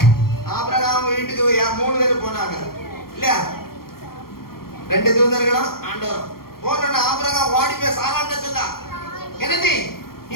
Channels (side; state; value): right; late; 0.93 ms